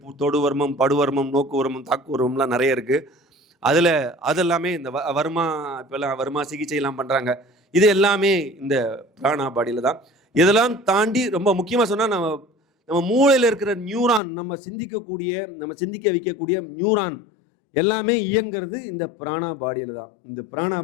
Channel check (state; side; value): drops out; right; at 14.2 s